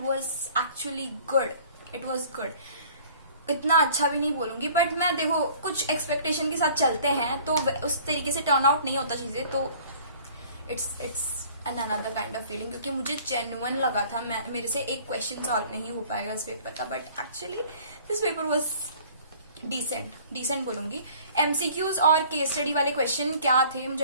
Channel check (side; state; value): both; inverted; correlation -0.51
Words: was actually good. It was good. इतना अच्छा भी नहीं बोलूंगी, बट मैं देखो कुछ एक्सपेक्टेशन के साथ चलते हैं तो उस तरीके से टर्न आउट नहीं होता चीजें, तो it's an another kind of feeling. क्योंकि मुझे जेन्युइन लगा था मेरे से एक क्वेश्चन सॉल्व नहीं हो पाएगा इस पेपर का, but actually this paper was decent बोलूंगी. एमसीक्यूज और केस स्टडी वाले क्वेश्चन क्या थे